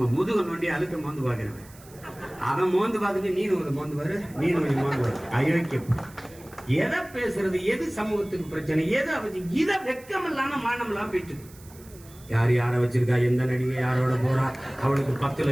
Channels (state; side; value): noise; right; hiss, 23 dB below the sound